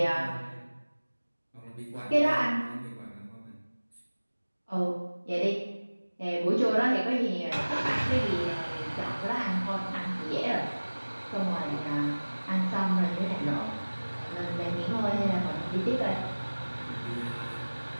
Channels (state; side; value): inverted; both; correlation -1.00